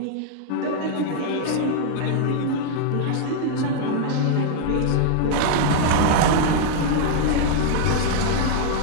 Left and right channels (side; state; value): both; different; correlation 0.00